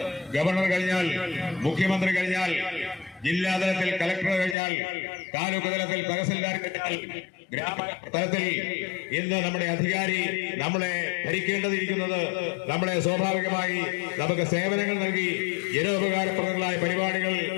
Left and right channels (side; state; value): right; drops out; at 4.5 s